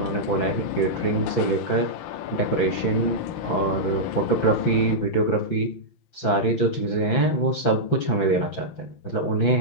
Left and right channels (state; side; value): late; right; 5.9 ms